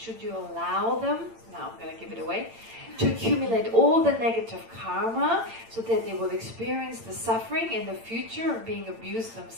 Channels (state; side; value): late; left; 8.9 ms